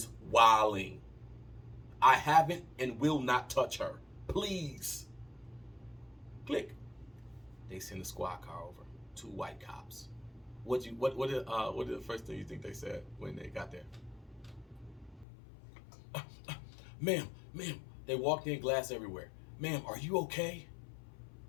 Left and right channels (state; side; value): drops out; right; at 15.2 s